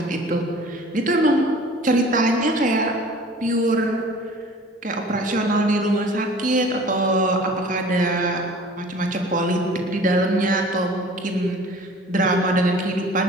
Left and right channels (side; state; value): both; normal; correlation 0.46